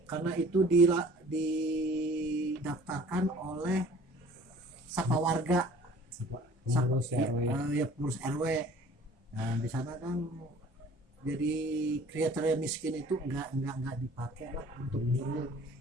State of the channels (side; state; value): both; normal; correlation 0.50